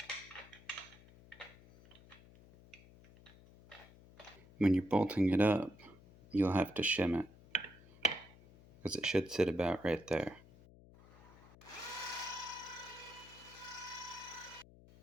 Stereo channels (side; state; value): left; noise; hum, 22 dB below the sound